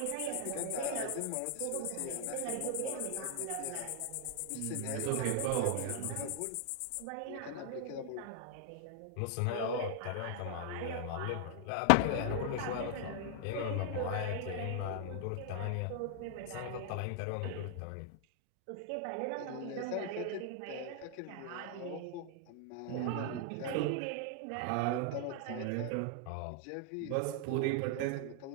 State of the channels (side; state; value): both; different; correlation 0.00